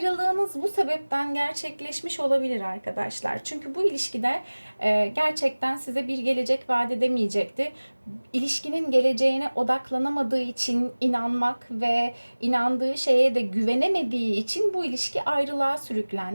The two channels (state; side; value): inverted; both; correlation -1.00